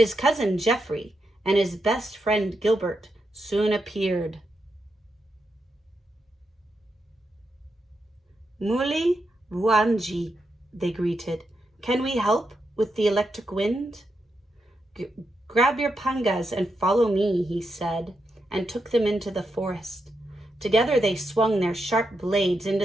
cousin Geoffrey and his best friend Gilbert soon appeared. "Muli Vuanji," they greeted. "Can we help with the electric wind?" "Grab your pangas and follow me," he said, and took them into the forest. Together they swung their sharp blades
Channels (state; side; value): normal; both; correlation 0.85